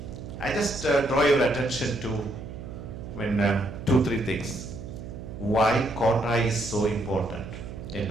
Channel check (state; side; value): noise; right; hum, 11 dB below the sound